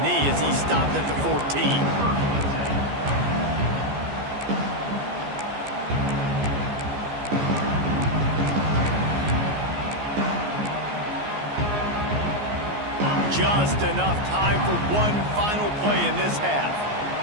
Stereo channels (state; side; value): late; left; 14 ms